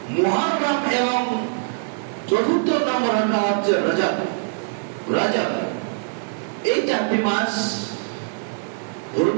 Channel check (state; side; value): silent; left; digital silence